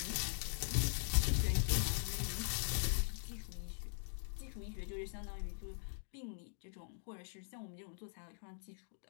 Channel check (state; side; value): silent; right; digital silence